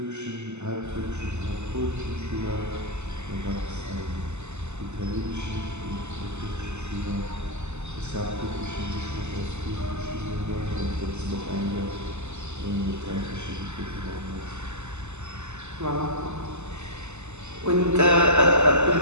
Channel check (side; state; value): left; late; 0.83 ms